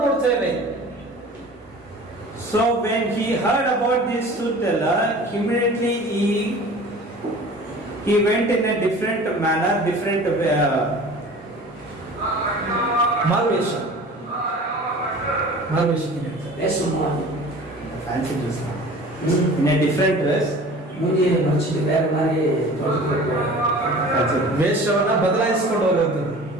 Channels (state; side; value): normal; both; correlation 0.42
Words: ನೋಡ್ತೇವೆ. So when he heard about this truth teller, immediately he went in a different manner, different ಮಾರುವೇಷ fancy dress, in a different dress. ವೇಷವನ್ನ ಬದಲಾಯಿಸಿಕೊಂಡು ಹೋಗುವಂಥದ್ದು.